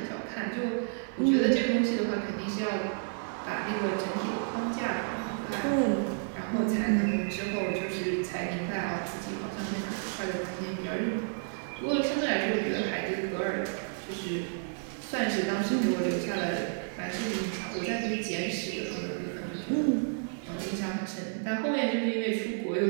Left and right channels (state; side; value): silent; left; digital silence